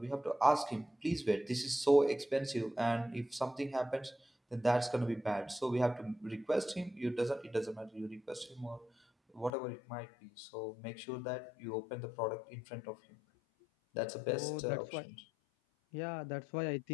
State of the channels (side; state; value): right; drops out; at 9.5 s